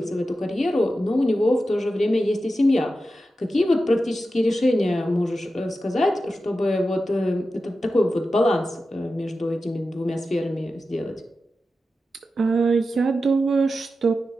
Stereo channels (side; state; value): both; normal; correlation 0.91